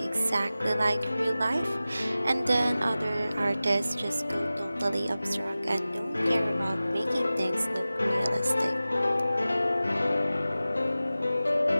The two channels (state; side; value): inverted; both; correlation -0.96